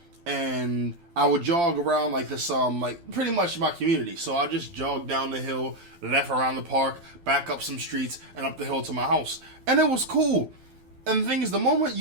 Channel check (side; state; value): left; late; 12 ms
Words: and I would jog around this pretty much my community. So I just jog down the hill, left around the park, back up some streets, and up the hill to my house. And it was cool. And the thing is, the moment